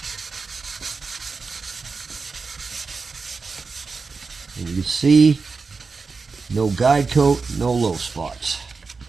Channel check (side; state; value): left; quieter; 4.6 dB